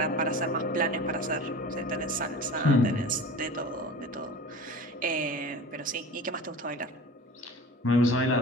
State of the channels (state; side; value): normal; both; correlation 0.36